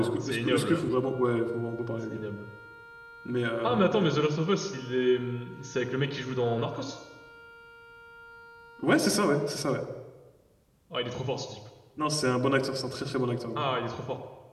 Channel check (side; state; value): both; identical; correlation 1.00